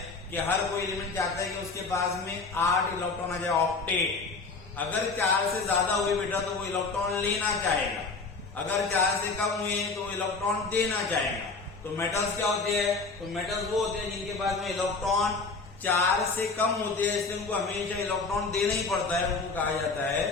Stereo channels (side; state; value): right; quieter; 4.1 dB